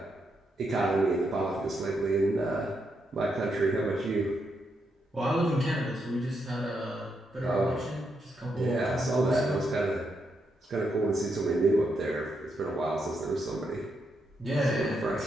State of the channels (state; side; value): normal; both; correlation 0.81